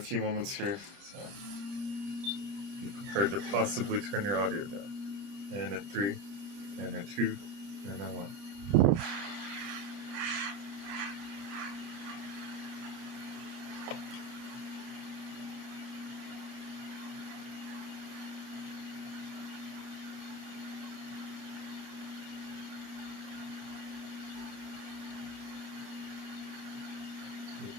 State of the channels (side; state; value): left; late; 30 ms